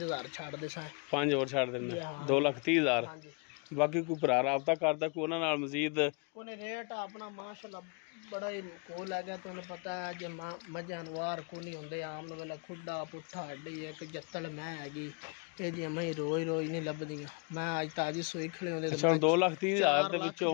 छड़ दे सा 5 और छड़ देना 2,30,000 बाकी कोई भरा राबता करदा कोई उन्हां नाल मजीद कोने रेट अपना माशाल्लाह बड़ा ही कोल है गया तुहानू पता है जे जानवर को नहीं होंदे आम वेला खुड्डा पुट्ठा हड्डी एक जत्तल मैं हैगी ये जी मैं रोज नहीं लभदियां मैं अज ताजी सोई खड़ी होंदे। अच्छा 2,30,000 दे विचों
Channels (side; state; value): right; quieter; 33.1 dB